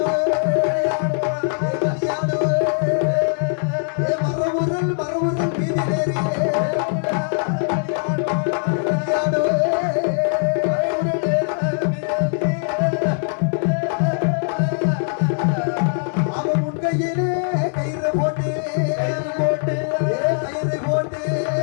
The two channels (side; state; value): right; silent; digital silence